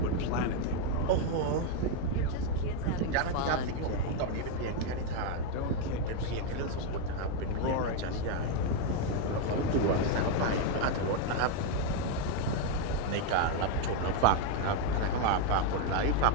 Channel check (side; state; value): both; different; correlation 0.01